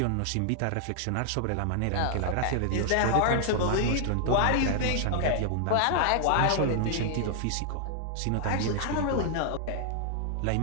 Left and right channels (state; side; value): different; both; correlation 0.00